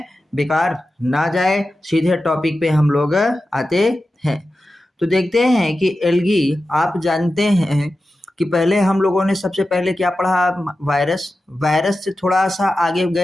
बेकार ना जाए। सीधे टॉपिक पे हम लोग आते हैं। तो देखते हैं कि एल्गी, आप जानते हैं कि पहले हम लोगों ने सबसे पहले क्या पढ़ा? वायरस से थोड़ा सा आगे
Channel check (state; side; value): normal; both; correlation 0.93